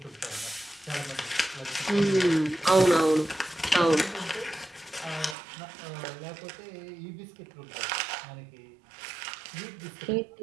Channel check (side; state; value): left; drops out; at 5.4 s